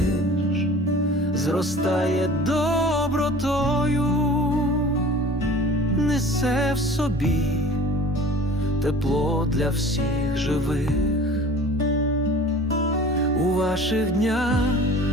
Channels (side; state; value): both; normal; correlation 0.43